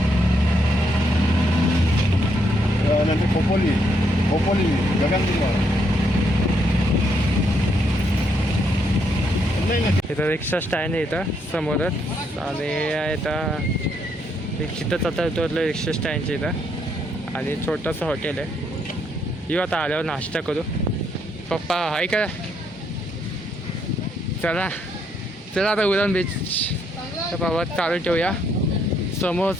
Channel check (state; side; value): normal; both; correlation 0.74